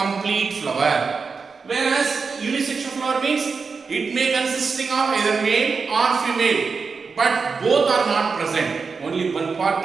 flower. Whereas unisexual flower means it may consisting of either male or female, but both are not present. Only one part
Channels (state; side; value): quieter; left; 5.0 dB